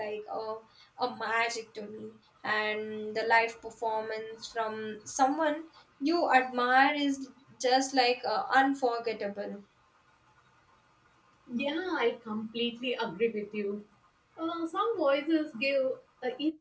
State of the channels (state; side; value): identical; both; correlation 1.00